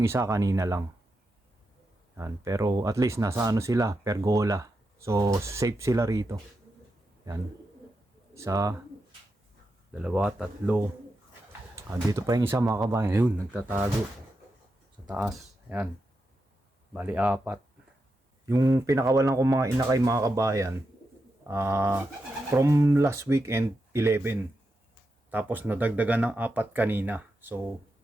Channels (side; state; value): both; normal; correlation 0.87